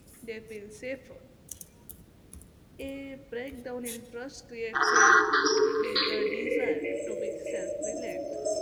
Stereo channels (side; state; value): both; identical; correlation 1.00